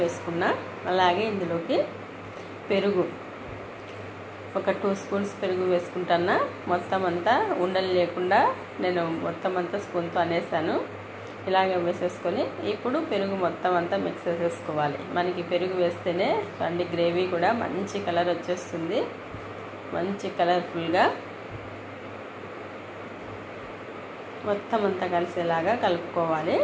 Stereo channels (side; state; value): both; identical; correlation 1.00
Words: వేసుకున్నా. అలాగే ఇందులోకి పెరుగు ఒక 2 స్పూన్స్ పెరుగు వేసుకుంటున్నా. మొత్తం అంతా ఉండలు లేకుండా నేను మొత్తం అంతా స్పూన్తో అనేసాను. ఇలాగే వేసేసుకొని ఇప్పుడు పెరుగు మొత్తం అంతా మిక్స్ చేసేసుకోవాలి. మనకి పెరుగు వేస్తేనే చూడండి గ్రేవీ కూడా మంచి కలర్ వచ్చేస్తుంది, మంచి కలర్ఫుల్గా మొత్తం అంతా కలిసేలాగా కలుపుకోవాలి.